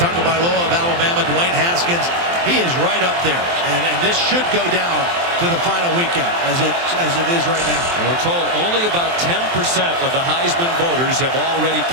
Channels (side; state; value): left; late; 23 ms